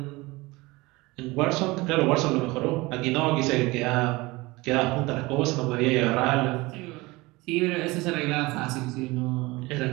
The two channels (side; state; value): left; quieter; 22.3 dB